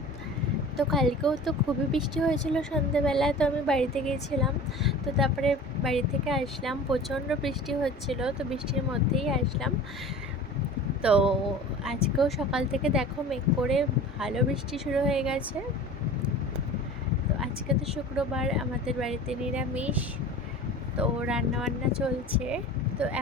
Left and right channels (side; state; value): both; normal; correlation 0.38